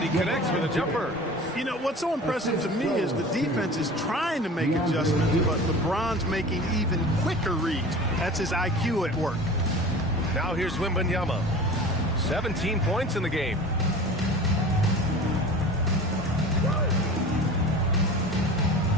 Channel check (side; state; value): both; normal; correlation 0.38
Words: he connects with a jumper. You know, what's so impressive to me is the defense is trying to make adjustments, but LeBron's making even quicker reads. That's his IQ at work. Now here's Wembanyama. 17 points in the game.